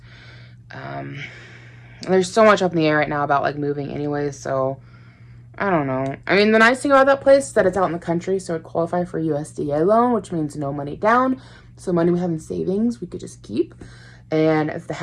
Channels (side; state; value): both; identical; correlation 1.00